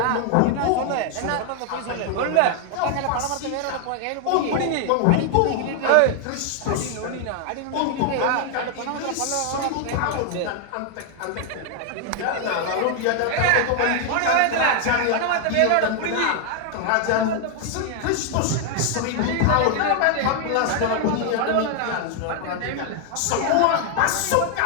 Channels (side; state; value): both; different; correlation 0.00